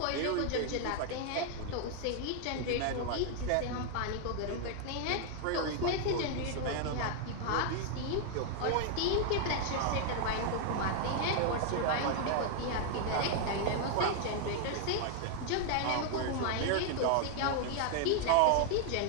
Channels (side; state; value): both; different; correlation 0.00